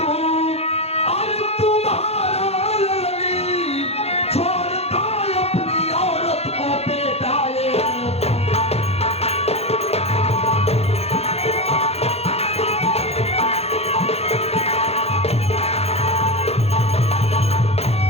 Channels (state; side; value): late; right; 0.30 ms